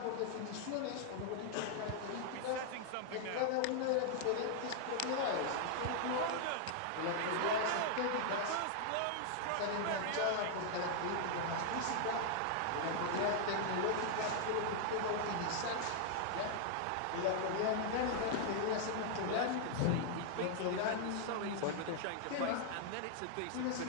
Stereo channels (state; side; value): different; both; correlation -0.01